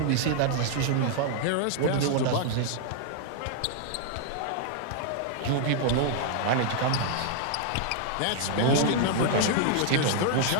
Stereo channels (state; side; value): different; both; correlation -0.01